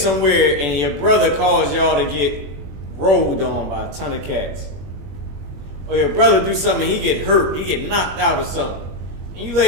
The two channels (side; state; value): left; late; 21 ms